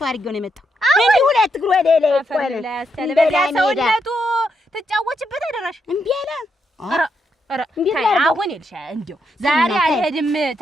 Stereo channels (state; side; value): normal; both; correlation 0.80